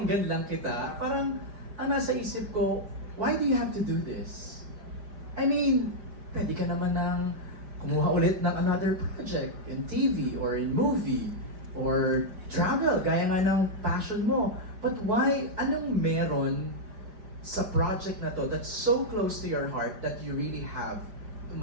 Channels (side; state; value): left; late; 5.0 ms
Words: lang kita, parang ang nasa isip ko, why do you have to do this? I mean, pwede ka naman ng kumuha ulit ng another project in TV or in movie or travel, gaya nga ng passion mo. But why, anong meron sa project na to that's so close to your heart that you really have to